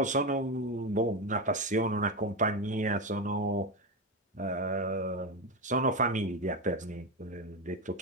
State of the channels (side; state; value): both; normal; correlation 0.13